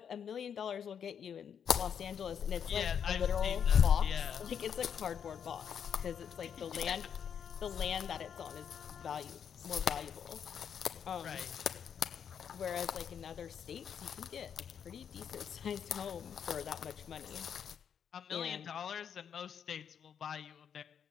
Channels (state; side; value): quieter; right; 7.9 dB